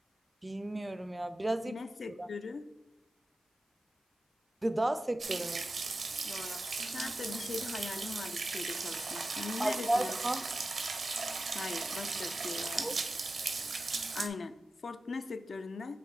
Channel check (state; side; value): normal; both; correlation 0.93